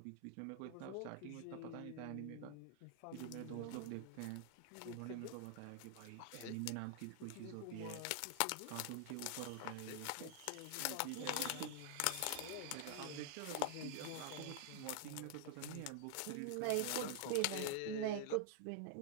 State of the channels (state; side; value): different; both; correlation 0.00